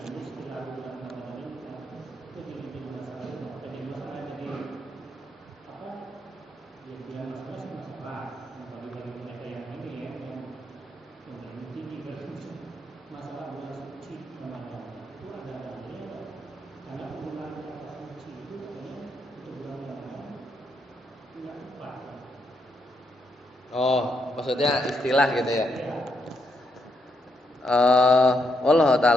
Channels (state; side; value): normal; both; correlation 0.78